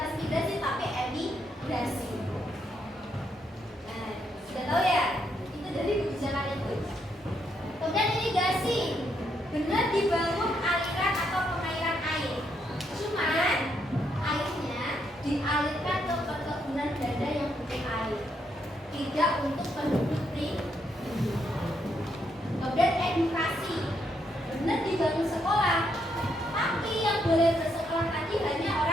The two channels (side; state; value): both; normal; correlation 0.77